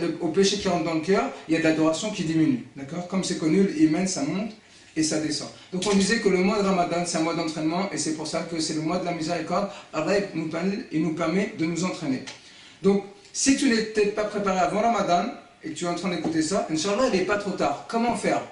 au péché qui rentre dans le cœur, il y a de l'adoration qui diminue. D'accord? Comme c'est connu, l'iman, ça monte et ça descend. Donc on disait que le mois de Ramadan, c'est un mois d'entraînement, et c'est pour ça que c'est le mois de la miséricorde. Allah, il nous permet de nous entraîner. Donc, si tu n'étais pas préparé avant Ramadan, et que tu es en train d'écouter ça, Inch'Allah, il n'est pas trop tard. Comment faire?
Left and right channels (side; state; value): both; identical; correlation 1.00